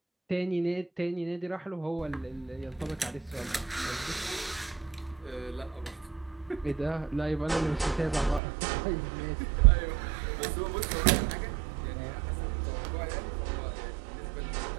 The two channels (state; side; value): drops out; left; at 8.4 s